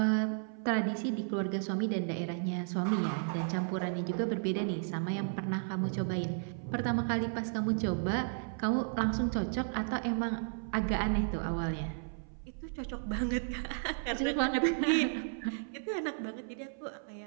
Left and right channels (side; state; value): left; silent; 55 dB below the other